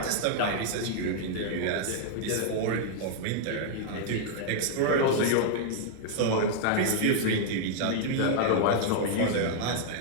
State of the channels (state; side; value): different; both; correlation -0.01